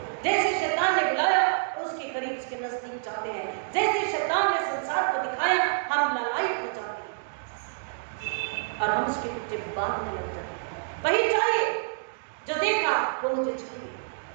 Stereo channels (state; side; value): silent; left; digital silence